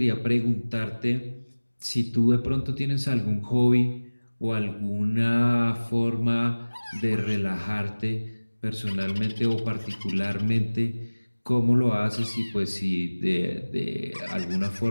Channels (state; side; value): inverted; both; correlation -1.00